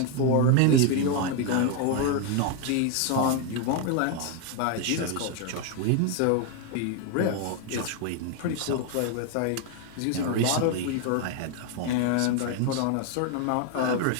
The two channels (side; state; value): both; different; correlation 0.01